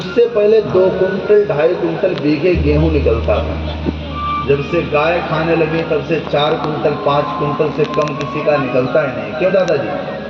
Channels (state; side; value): identical; both; correlation 1.00